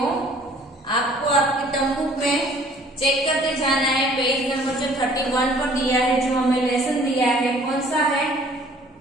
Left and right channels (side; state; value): both; normal; correlation 0.55